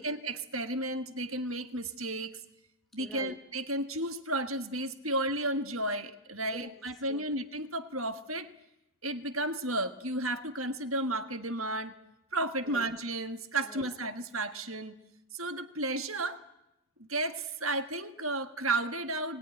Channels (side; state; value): both; normal; correlation 0.00